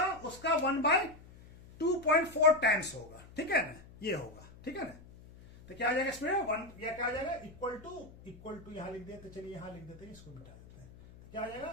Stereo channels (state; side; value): noise; left; hum, 20 dB below the sound